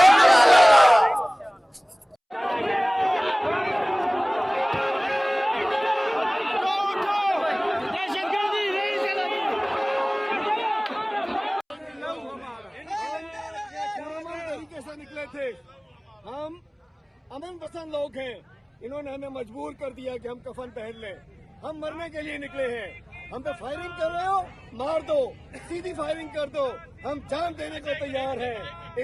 तरीके से निकले थे, हम अमन पसंद लोग हैं। इन्होंने हमें मजबूर कर दिया कि हम कफन पहन लें। हम मरने के लिए निकले हैं। हम पे फायरिंग कर रहे हो, मार दो, सीधी फायरिंग कर दो, हम जान देने को तैयार हैं।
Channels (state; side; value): identical; both; correlation 1.00